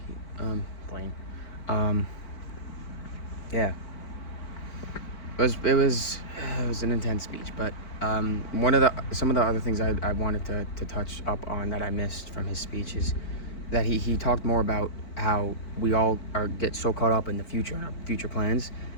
Blaine. Um, yeah. It was an intense speech, but some of the other things I wanted to touch up on that I missed from his speech is that he talked more about how we all get so caught up in the future and our future plans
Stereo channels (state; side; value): late; right; 4.5 ms